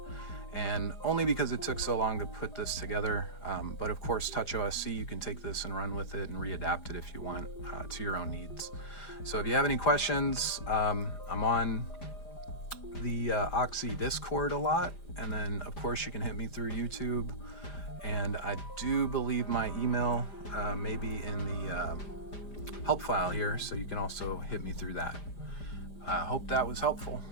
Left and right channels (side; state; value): right; late; 5.0 ms